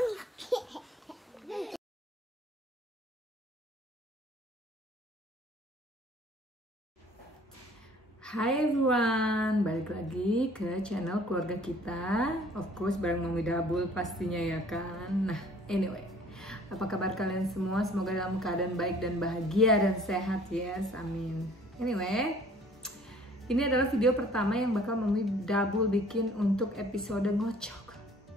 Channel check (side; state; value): both; normal; correlation 0.54